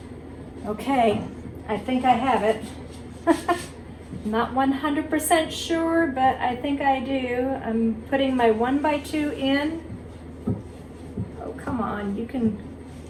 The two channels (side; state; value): both; identical; correlation 1.00